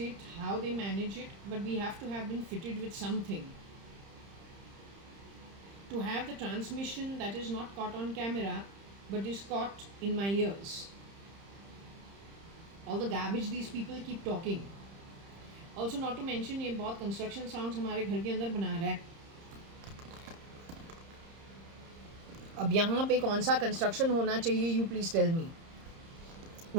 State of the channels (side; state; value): left; late; 30 ms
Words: how they manage it, but we have to have been fitted with something. To have the transmission that is not caught on camera, but is caught in my ears. All the garbage these people keep talking. Also, not to mention, ये बहुत construction sounds हमारे घर के अंदर बना रहा है. अब यहाँ पे कौन सा कंस्ट्रक्शन होना चाहिए, you please tell me.